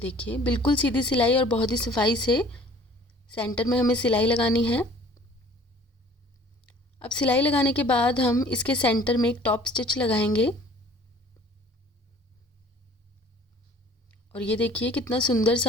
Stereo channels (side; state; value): both; normal; correlation 0.52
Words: बिल्कुल सीधी सिलाई और बहुत ही सफाई से सेंटर में हमें सिलाई लगानी है। अब सिलाई लगाने के बाद हम इसके सेंटर में एक टॉप स्टिच लगाएंगे और ये देखिए कितना सुंदर